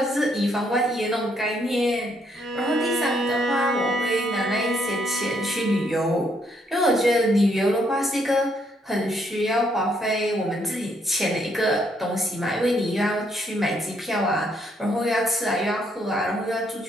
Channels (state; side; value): normal; both; correlation 0.72